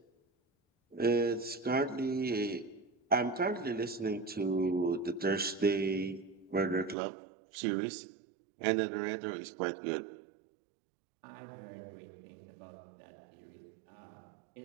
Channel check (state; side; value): drops out; left; at 7.0 s